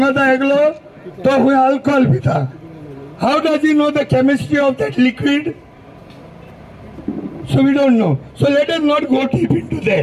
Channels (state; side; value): identical; both; correlation 1.00